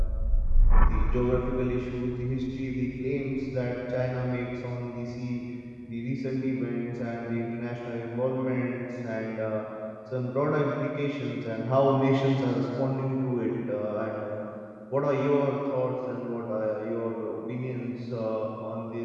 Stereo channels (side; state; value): both; identical; correlation 1.00